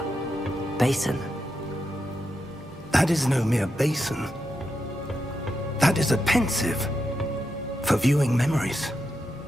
basin. That is no mere basin. That is a pensive for viewing memories.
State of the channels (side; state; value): both; normal; correlation 0.86